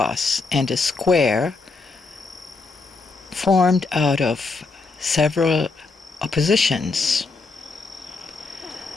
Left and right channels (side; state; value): right; quieter; 4.0 dB